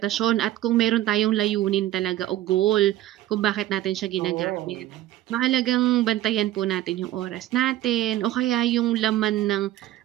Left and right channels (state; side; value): quieter; left; 14.2 dB